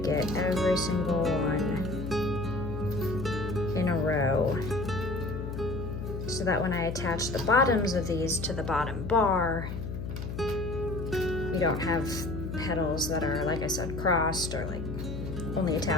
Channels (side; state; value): left; noise; hum, 6 dB below the sound